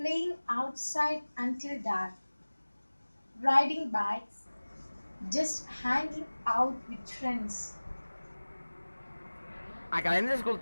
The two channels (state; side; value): inverted; both; correlation -1.00